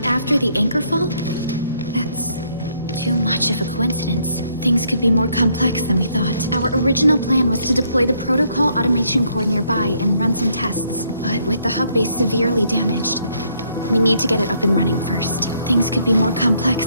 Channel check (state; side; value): inverted; both; correlation -0.69